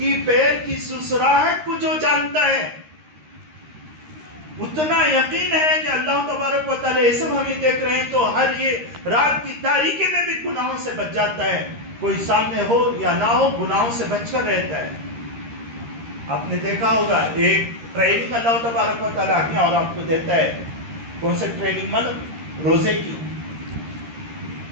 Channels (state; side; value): late; left; 13 ms